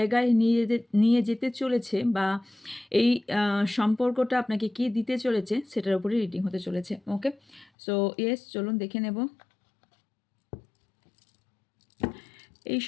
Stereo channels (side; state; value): right; drops out; at 7.7 s